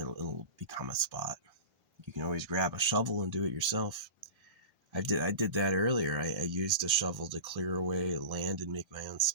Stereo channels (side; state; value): left; late; 1.3 ms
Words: become a spot. You can always grab a shovel and do it yourself. I did that earlier. I used a shovel to clear away land and make my own